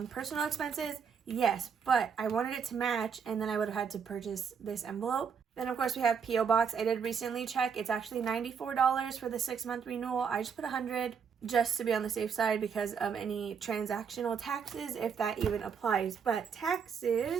personal expenses? Yes, but I wanted it to match, and then I would have had to purchase this envelope. Then, of course, we have P.O. Box. I did recently check. It's actually $94 for the 6-month renewal. I just put $100 just to be on the safe side because of any transactional taxes, if that even applies. But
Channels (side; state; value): left; quieter; 6.6 dB